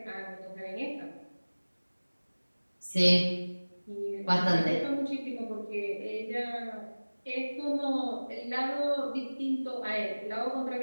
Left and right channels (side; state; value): both; inverted; correlation -1.00